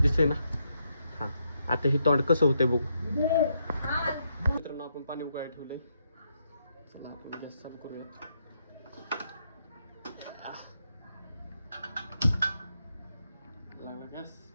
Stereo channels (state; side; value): inverted; both; correlation -0.79